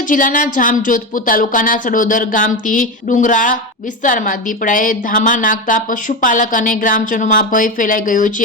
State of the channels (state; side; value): normal; both; correlation 0.17